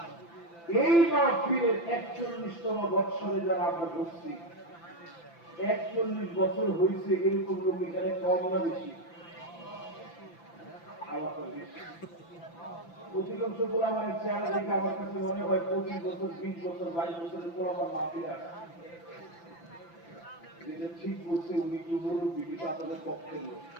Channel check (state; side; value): late; right; 5.9 ms